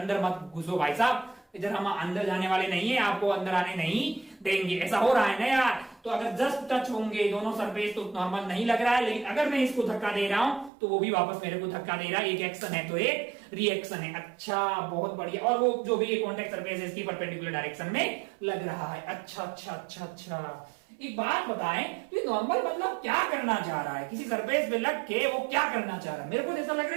मत घुसो भाई साहब, इधर हम अंदर जाने वाले नहीं है, आपको अंदर आने नहीं देंगे। ऐसा हो रहा है ना यार। तो अगर जस्ट टच होंगे दोनों सरफेस तो नॉर्मल नहीं लग रहा है, लेकिन अगर मैं इसको धक्का दे रहा हूं तो वो भी वापस मेरे को धक्का दे रहा है। एक एक्शन है तो एक रिएक्शन है। अच्छा बहुत बढ़िया। और वो जो भी कॉन्टेक्ट सरफेस है इसकी परपेंडिकुलर डायरेक्शन में लग रहा है। अच्छा अच्छा अच्छा अच्छा। एक बात बताएं, तो नॉर्मल मतलब क्या करना चाह रहा है? किसी सरफेस पे लग के वो क्या करना चाह रहा है? मेरे को ऐसा लग रहा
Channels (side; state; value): left; drops out; at 10.7 s